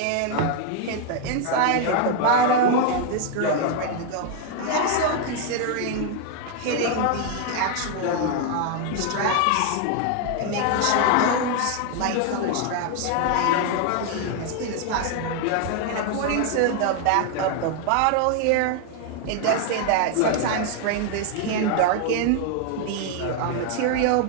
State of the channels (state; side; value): different; both; correlation 0.00